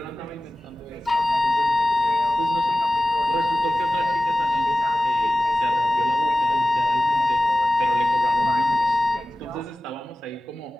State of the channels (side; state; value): both; normal; correlation 0.96